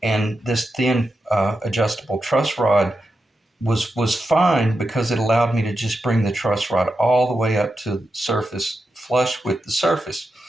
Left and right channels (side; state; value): both; normal; correlation 0.88